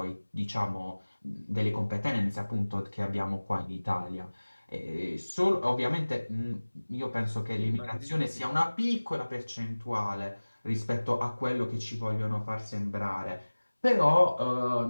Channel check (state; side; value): inverted; both; correlation -1.00